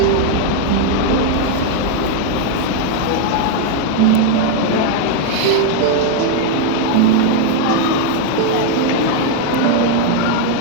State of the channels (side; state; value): both; different; correlation 0.00